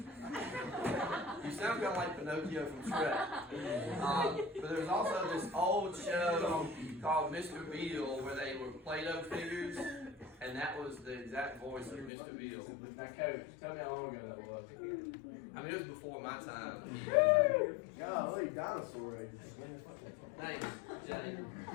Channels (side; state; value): right; drops out; at 12.1 s